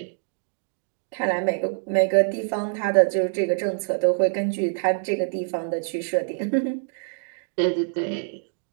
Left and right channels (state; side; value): silent; left; digital silence